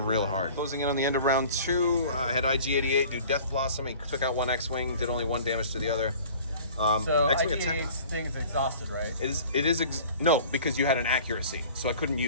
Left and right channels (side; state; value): both; inverted; correlation -0.46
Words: real hard. Closing in on the end of round 2, I had IG-88 do Death Blossom. He took out 1 X-Wing, did only 1 damage to the other. So X-Wing IG-88's thing is exhausted, right? No, because you had an accuracy, so I couldn't